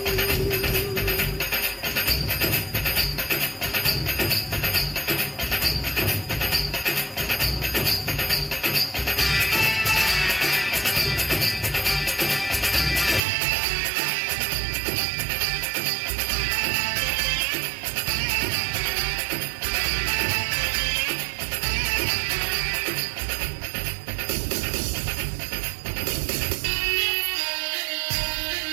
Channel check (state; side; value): drops out; left; at 13.2 s